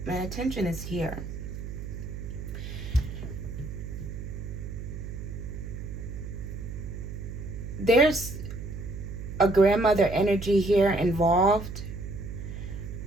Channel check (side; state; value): right; noise; hum, 8 dB below the sound